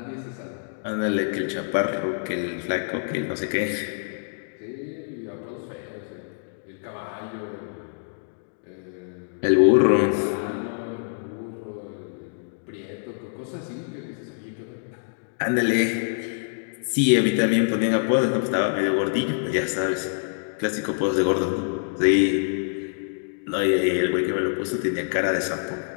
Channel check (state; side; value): silent; right; digital silence